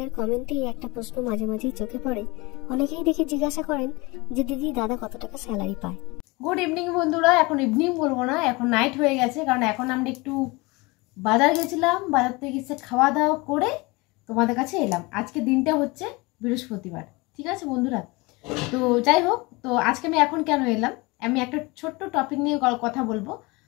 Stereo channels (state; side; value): quieter; right; 24.6 dB